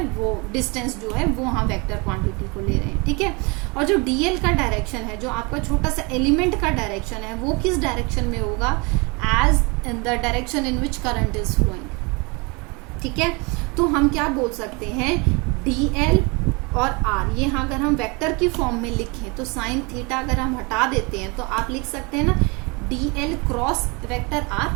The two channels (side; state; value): left; quieter; 28.8 dB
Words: वो डिस्टेंस जो है वो हम वेक्टर क्वांटिटी को ले रहे हैं, ठीक है। और जो डीएल का डायरेक्शन है, जो आपका छोटा सा एलिमेंट का डायरेक्शन है, वो किस डायरेक्शन में होगा, as in the direction in which current is flowing, ठीक है। तो हम क्या बोल सकते हैं, डीएल और आर, ये अगर हम वेक्टर की फॉर्म में लिखें तो साइन थीटा अगर हम हटा देते हैं तो आप लिख सकते हैं ना डीएल क्रॉस वेक्टर